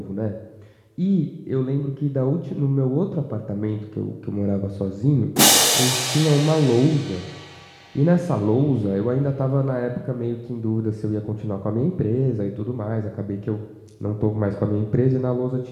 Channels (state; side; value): identical; both; correlation 1.00